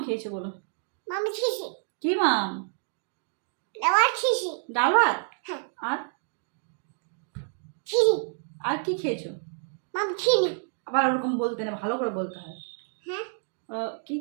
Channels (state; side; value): silent; left; 59 dB below the other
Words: খেয়েছো বলো? কি মাম? ডাল ভাত। আর আর কি খেয়েছো? আবার ওরকম বলতে না, ভালো করে বলতে হয়। কি